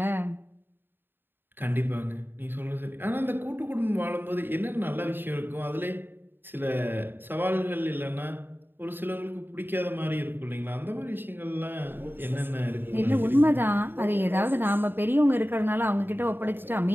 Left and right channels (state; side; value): late; left; 0.097 ms